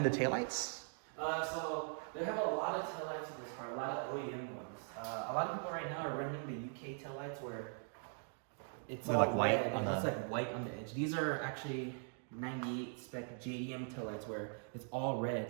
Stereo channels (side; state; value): left; silent; 50 dB below the other